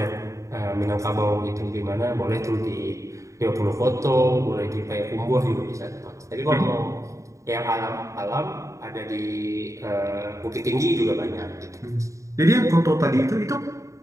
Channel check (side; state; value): left; late; 0.15 ms